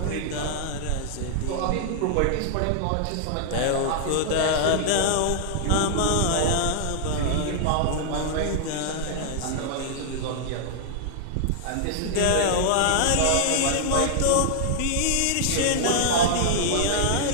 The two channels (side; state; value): both; different; correlation -0.01